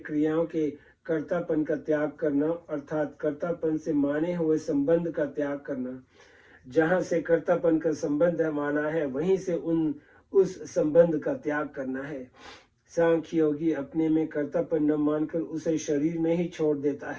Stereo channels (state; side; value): identical; both; correlation 1.00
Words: के कर्तापन का त्याग करना, अर्थात कर्तापन से माने हुए संबंध का त्याग करना। जहाँ से कर्तापन का संबंध माना है, वहीं से उस संबंध का त्याग करना है। सांख्य योगी अपने में कर्तापन न मानकर उसे शरीर में ही छोड़ देता